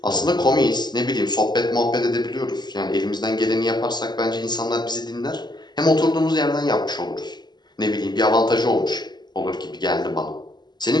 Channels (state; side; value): late; right; 0.21 ms